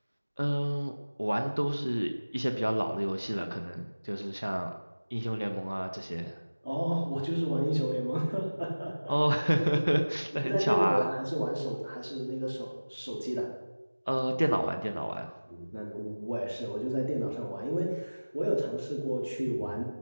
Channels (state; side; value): inverted; both; correlation -1.00